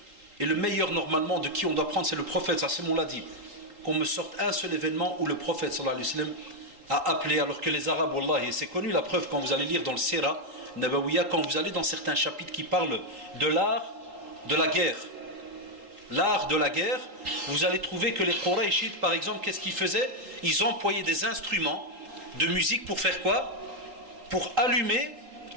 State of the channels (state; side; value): late; left; 3.8 ms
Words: et le meilleur normalement de qui on doit prendre c'est le prophète, ça c'est mon l'a dit, qu'on me sorte un seul événement où le prophète sallallahu alayhi wa sallam a appelé, alors que les Arabes, wallah, et c'est connu la preuve quand vous allez lire dans le Sira Nabawiya, quand vous allez dans certains chapitres qui parlent de l'art de la guerre, l'art de la guerre, vous allez trouver que les Qurayshites par exemple, qu'est-ce qu'ils faisaient? Ils employaient des instruments de musique pour faire quoi? Pour allumer